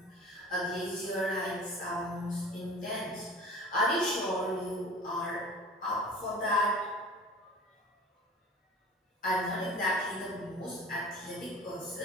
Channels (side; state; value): both; normal; correlation 0.42